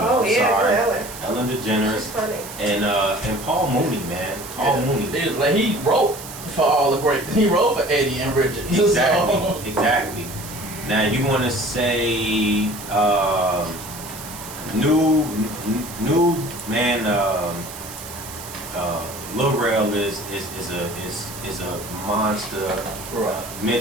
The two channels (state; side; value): noise; right; hiss, 13 dB below the sound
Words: Oh, yeah, Sorry. Ellen. Ellen She's DeGeneres funny. and Paul Mooney, man. Paul Mooney. Like he wrote for all the great. He wrote for Eddie and Richard. Exactly. So, Exactly. Now you want to say new man. Lil Rel is a monster